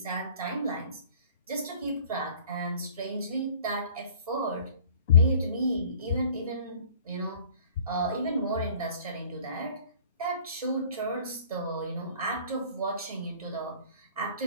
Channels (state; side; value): inverted; both; correlation -0.49